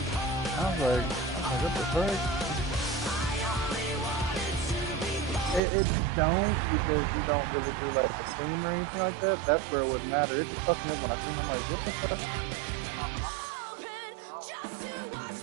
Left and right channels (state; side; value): drops out; left; at 5.6 s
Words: I was like, what the fuck? It don't, because you don't really do like a team or anything like that. That's where it would matter. It just fucked me up when I seen. I'm like, what the fuck?